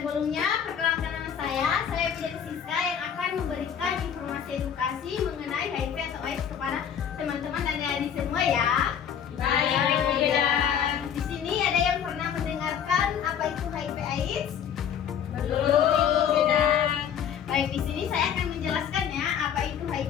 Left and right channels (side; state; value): right; quieter; 8.5 dB